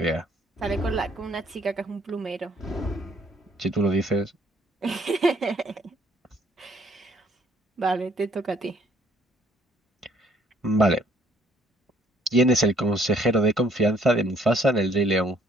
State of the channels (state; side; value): normal; both; correlation 0.62